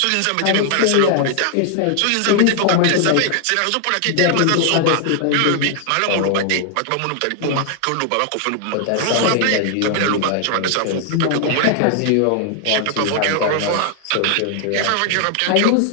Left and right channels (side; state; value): both; different; correlation 0.00